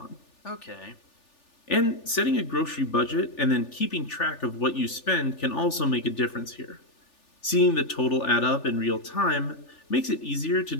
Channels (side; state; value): right; late; 3.4 ms